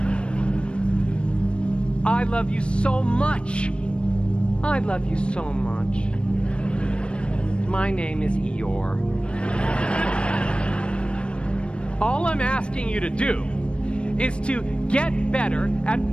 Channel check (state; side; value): late; right; 0.058 ms